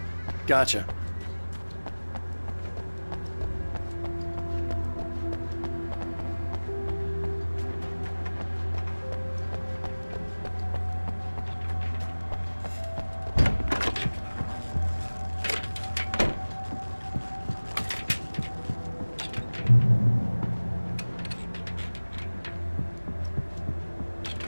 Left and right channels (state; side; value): inverted; both; correlation -1.00